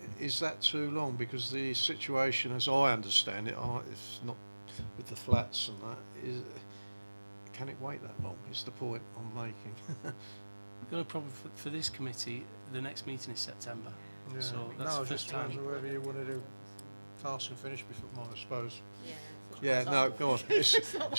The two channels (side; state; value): both; inverted; correlation -1.00